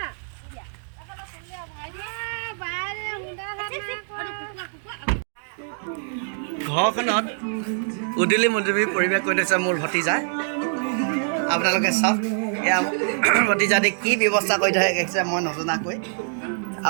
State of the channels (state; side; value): silent; left; digital silence